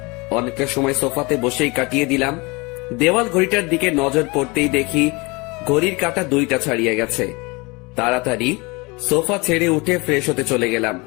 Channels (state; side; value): quieter; right; 26.3 dB